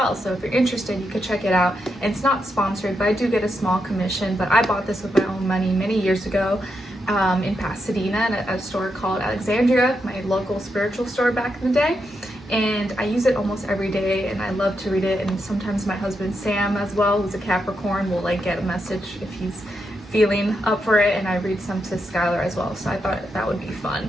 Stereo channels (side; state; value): both; normal; correlation 0.83